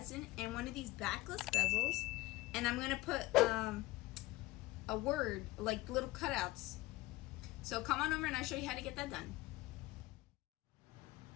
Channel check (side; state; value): right; quieter; 19.2 dB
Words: in one of these backless bezels. And I'm going to put a word, like little cutouts. So come on over and I'll show you how to get that done.